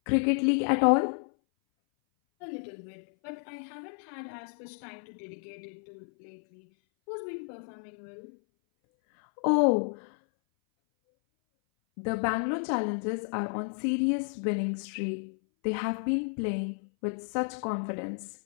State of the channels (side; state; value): right; silent; 57 dB below the other